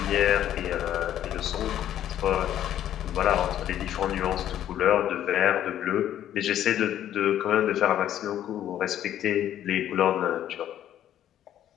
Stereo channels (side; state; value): right; quieter; 11.3 dB